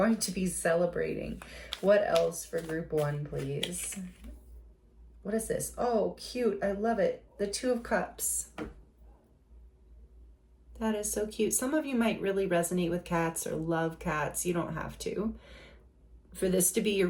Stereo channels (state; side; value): identical; both; correlation 1.00